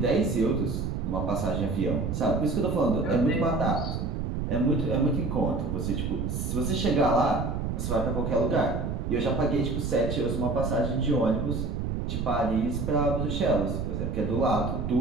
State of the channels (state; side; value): noise; right; rumble, 2 dB below the sound